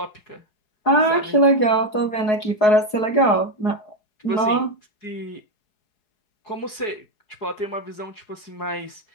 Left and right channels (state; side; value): late; right; 4.7 ms